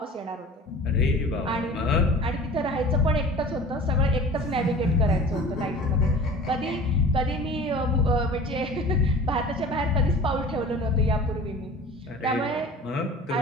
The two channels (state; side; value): normal; both; correlation 0.41